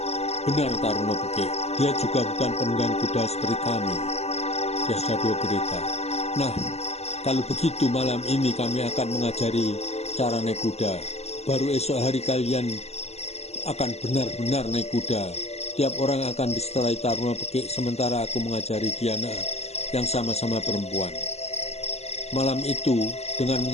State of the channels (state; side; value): late; right; 0.30 ms